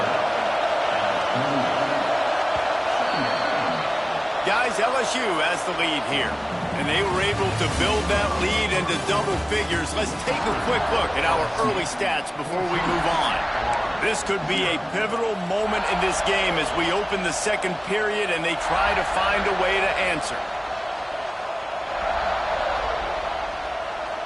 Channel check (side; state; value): both; identical; correlation 1.00